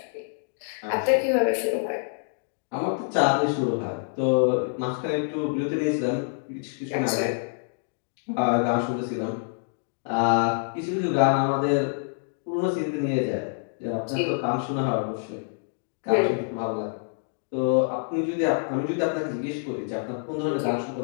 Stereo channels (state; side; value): silent; right; digital silence